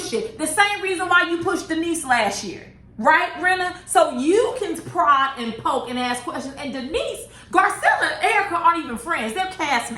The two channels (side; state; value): both; identical; correlation 1.00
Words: it? The same reason why you pushed Denise last year. Right, Renna? So you can prod and poke and ask questions. And Denise, Garcelle and Erica aren't even friends. They're